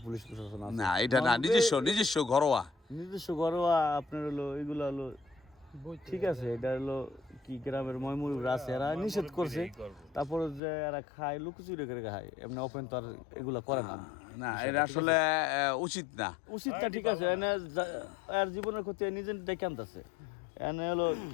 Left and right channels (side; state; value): right; drops out; at 10.6 s